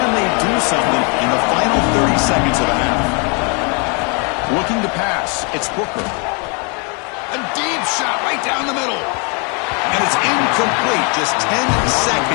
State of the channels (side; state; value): right; quieter; 35.0 dB